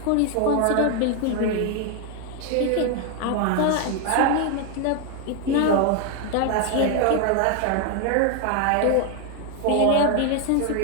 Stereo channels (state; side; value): different; both; correlation 0.01